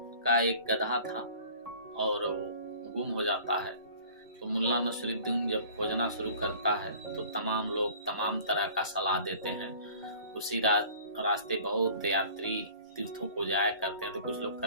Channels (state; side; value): inverted; both; correlation -0.48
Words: का एक गधा था और गुम हो जाता है। तो मुल्ला नसरुद्दीन जब खोजना शुरू करता है तो तमाम लोग तमाम तरह का सलाह देते हैं। उसी रास्ते बहुत यात्री तीर्थों को जाया करते हैं। तो कुछ लोग